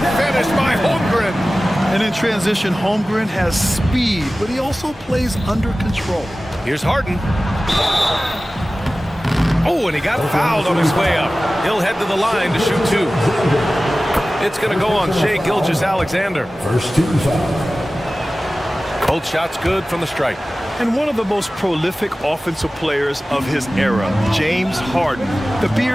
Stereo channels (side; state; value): both; normal; correlation 0.96